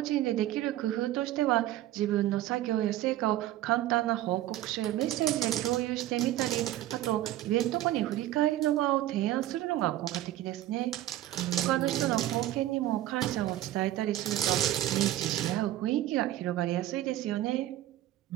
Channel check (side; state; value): left; quieter; 14.1 dB